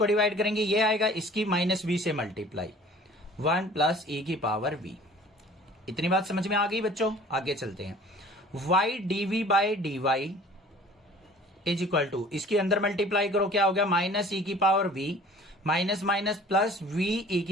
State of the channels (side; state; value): both; normal; correlation 0.48